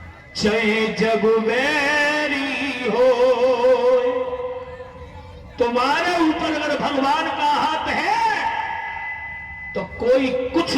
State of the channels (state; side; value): identical; both; correlation 1.00